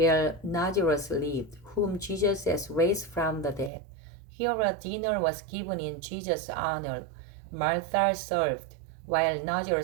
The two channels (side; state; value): left; drops out; at 3.7 s